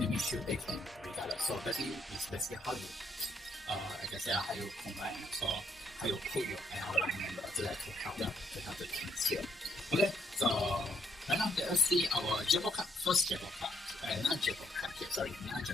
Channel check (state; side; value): normal; both; correlation 0.73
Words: shield they can regardless. So basically it's basically how you I can say how you combine, so how you put your ally member to help them to help the teams here. Okay, so right now let us see our Jackpot card, first Jackpot card, not Jackpot card here, sorry, not